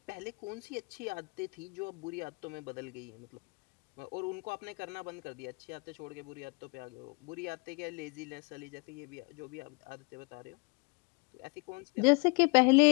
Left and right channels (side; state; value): right; quieter; 31.2 dB